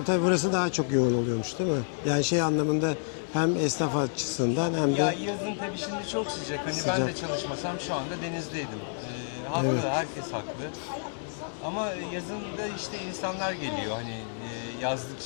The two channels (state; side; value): silent; right; digital silence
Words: tabii burası daha çok yoğun oluyormuş değil mi? Yani şey anlamında hem esnaf açısından hem Ya de yazın tabii şimdi çok sıcak. Hani Sıcak. ben de çalışmasam şu anda denizdeydim. Haklı, Evet. herkes haklı. Ama yazın da işte insanlar geliyor. Hani